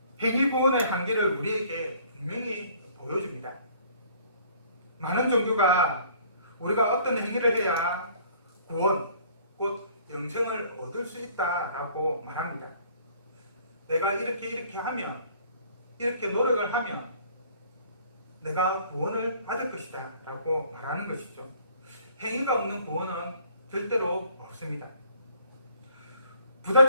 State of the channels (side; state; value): both; inverted; correlation -0.57